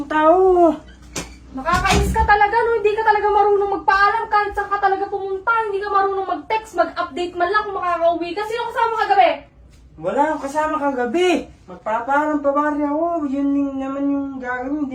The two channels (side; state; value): both; identical; correlation 1.00